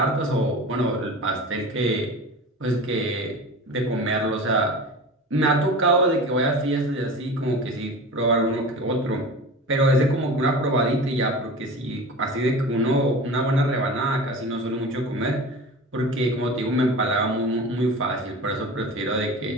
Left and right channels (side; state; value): both; normal; correlation 0.34